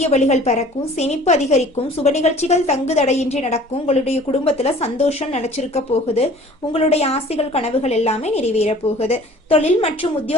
வழிகள் பிறக்கும். சேமிப்பு அதிகரிக்கும். சுப நிகழ்ச்சிகள் தங்கு தடையின்றி நடக்கும். உங்களுடைய குடும்பத்துல சந்தோஷம் நினைச்சிருக்க போகுது. உங்களுடைய ஆசைகள், கனவுகள் எல்லாமே நிறைவேற போகுது. தொழில் மற்றும்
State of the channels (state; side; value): normal; both; correlation 0.49